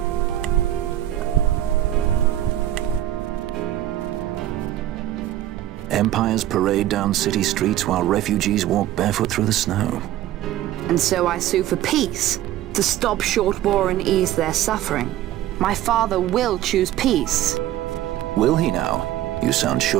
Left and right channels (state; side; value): quieter; left; 13.3 dB